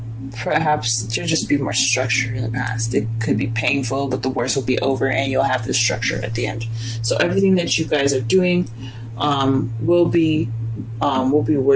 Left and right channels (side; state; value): both; identical; correlation 1.00